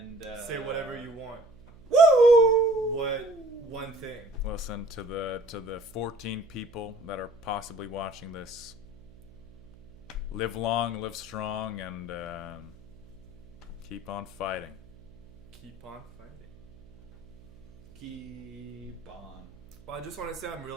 say whatever you want. Woo! What one thing? Listen to the 14 people that are possibly watching this. Live long, live strong, and keep on fighting. keep on fighting. Keep on. Well, I just want to say I'm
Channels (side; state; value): right; noise; hum, 24 dB below the sound